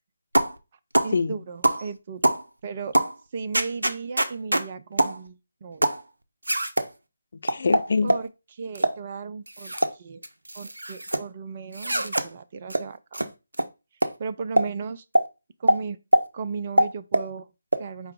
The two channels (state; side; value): inverted; both; correlation -0.94